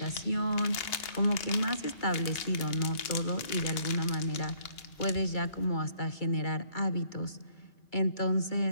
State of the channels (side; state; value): right; late; 2.8 ms